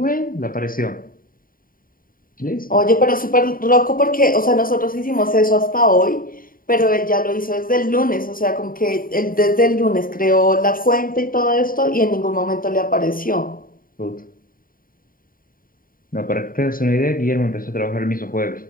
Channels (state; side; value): late; right; 0.41 ms